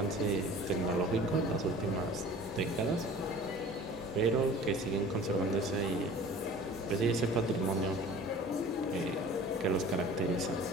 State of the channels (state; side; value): normal; both; correlation 0.43